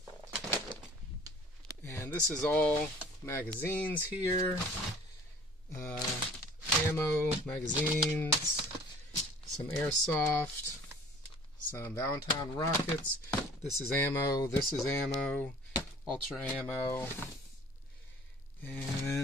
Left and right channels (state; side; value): normal; both; correlation 0.48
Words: And this is all magazines here. Ammo, magazines, some airsoft, some Valentine rockets. This is ammo, ultra ammo,